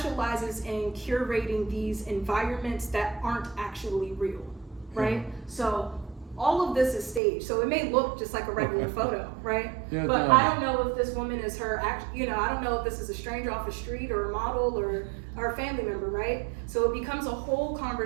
in curating these environments that aren't actually real, right? So all of this is staged, so it may look just like a regular photo, right? Yeah, but I don't know if this woman is her I don't know if this is a stranger off the street or a model or a family member, right? So it becomes a whole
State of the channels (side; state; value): left; drops out; at 7.2 s